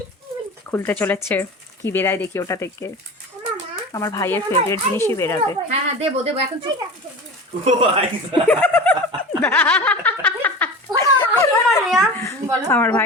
খুলতে চলেছে, কি বেরায় দেখি ওটা থেকে। আমার ভাইয়ের ফেভারিট জিনিসই বেরাবে। হ্যাঁ দেবো এখন চুপ। আমার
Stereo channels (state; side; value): normal; both; correlation 0.32